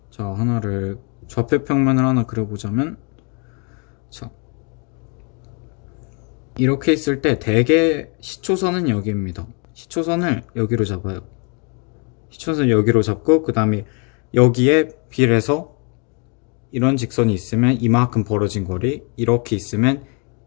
자, 하나를 좌표 평면을 하나 그려보자면 자, 이렇게 있을 때 대개 시초선은 여기입니다. 시초선을 여기로 잡아요. 시초선 여기로 잡고 그 다음에 여기에 비례해서 이런 직선이 있으면 이만큼 벌어진 거리, 이렇게 있으면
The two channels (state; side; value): quieter; right; 36.4 dB